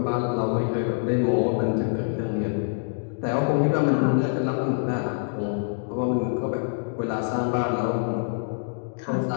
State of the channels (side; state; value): right; silent; digital silence